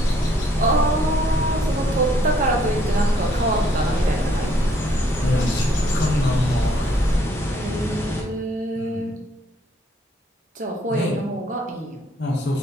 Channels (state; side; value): normal; both; correlation 0.66